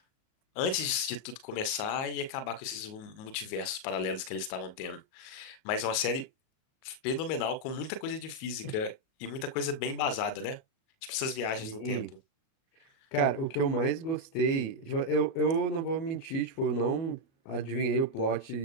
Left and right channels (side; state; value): right; late; 38 ms